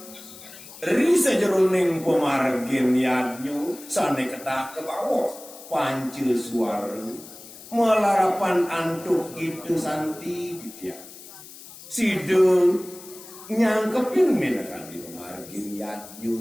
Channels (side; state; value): left; noise; hiss, 17 dB below the sound